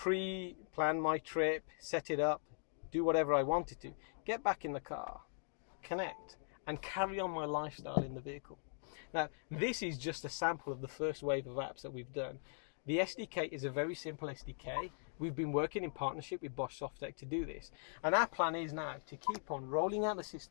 my trip, set it up, do whatever I wanted to, get back in the car, connect, and carry on my lifestyle in the vehicle. Now, this is just a sample of the first wave of apps that we've done. The SDK is a very simple SDK. We've been working in partnership with Bosch Softec to do this. And our plan is now to keep on rolling out the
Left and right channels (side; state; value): right; silent; digital silence